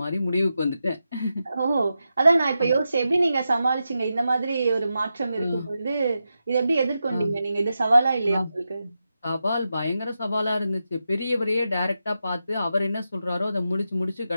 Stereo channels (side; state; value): both; inverted; correlation -0.89